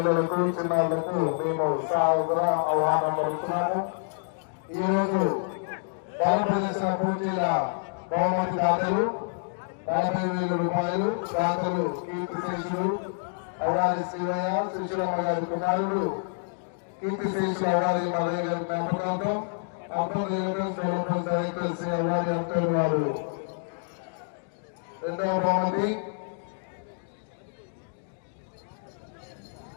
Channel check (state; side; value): silent; right; digital silence